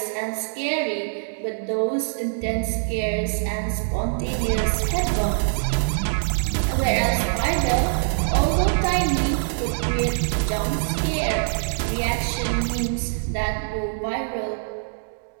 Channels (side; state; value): left; silent; digital silence